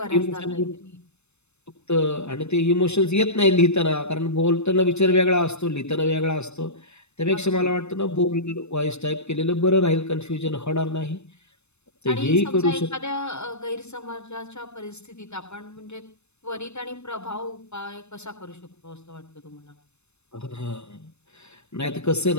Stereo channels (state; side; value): late; right; 0.81 ms